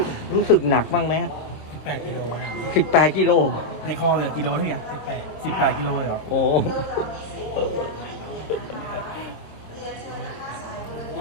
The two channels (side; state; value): right; late; 26 ms